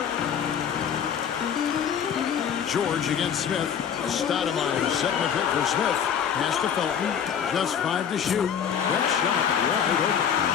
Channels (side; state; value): right; quieter; 8.1 dB